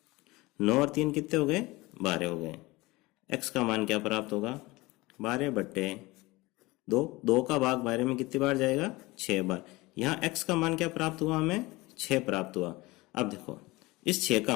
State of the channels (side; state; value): right; quieter; 21.6 dB